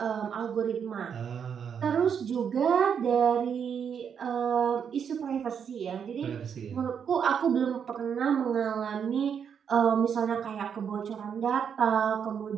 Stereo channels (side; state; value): left; quieter; 7.4 dB